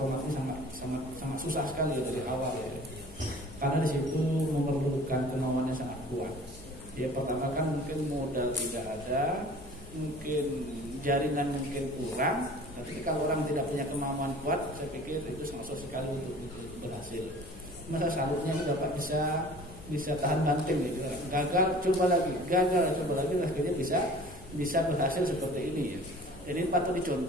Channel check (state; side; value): noise; left; hum, 19 dB below the sound